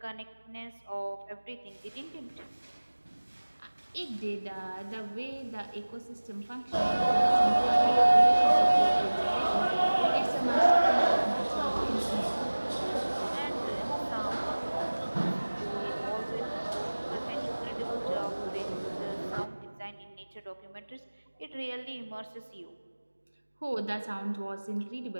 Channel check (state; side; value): inverted; both; correlation -1.00